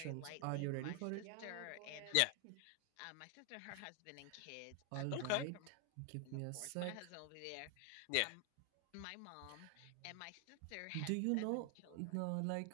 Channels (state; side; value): different; both; correlation 0.00